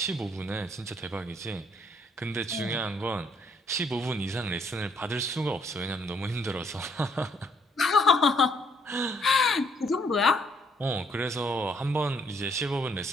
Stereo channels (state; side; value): normal; both; correlation 0.68